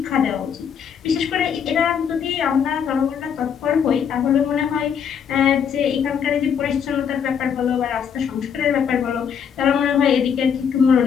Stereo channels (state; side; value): quieter; right; 7.5 dB